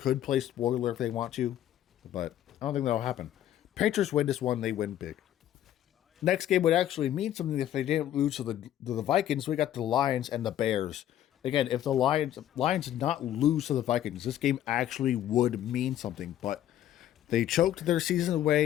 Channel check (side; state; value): right; quieter; 11.9 dB